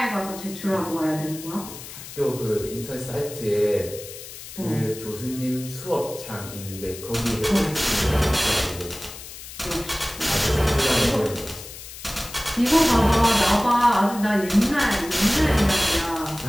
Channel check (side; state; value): left; noise; hiss, 13 dB below the sound